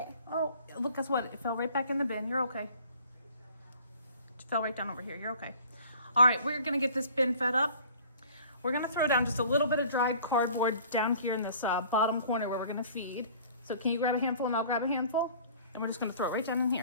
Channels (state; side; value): inverted; both; correlation -0.50